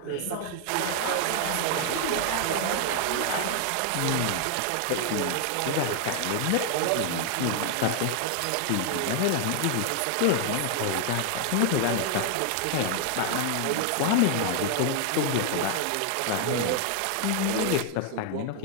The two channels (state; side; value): different; both; correlation 0.00